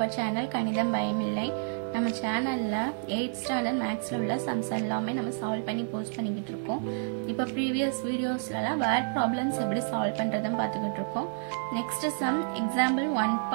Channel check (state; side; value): silent; left; digital silence